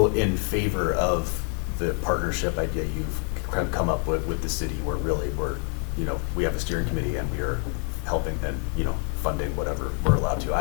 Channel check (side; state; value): right; quieter; 39.2 dB